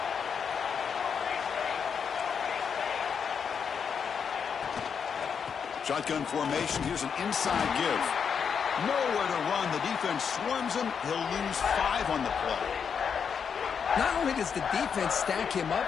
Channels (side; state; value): right; quieter; 6.8 dB